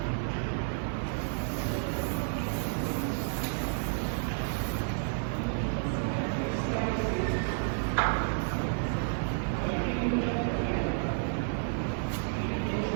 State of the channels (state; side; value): silent; left; 57 dB below the other